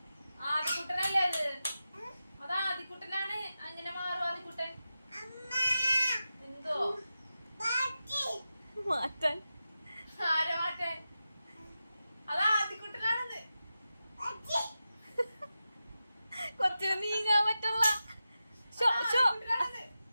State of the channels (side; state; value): both; inverted; correlation -0.92